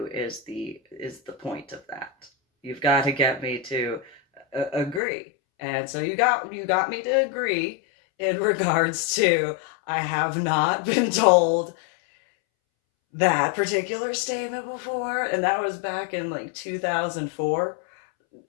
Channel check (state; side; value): drops out; right; at 5.0 s